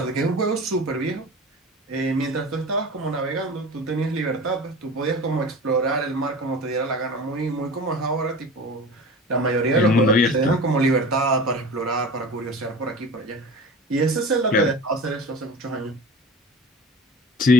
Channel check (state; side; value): normal; both; correlation 0.35